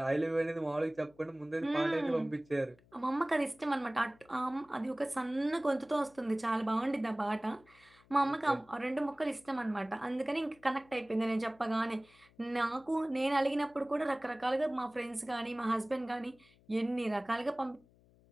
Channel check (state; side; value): noise; left; hum, 29 dB below the sound